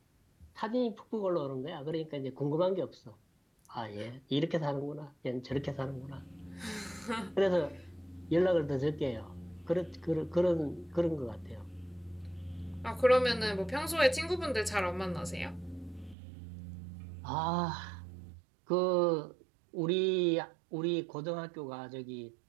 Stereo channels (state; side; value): drops out; left; at 16.2 s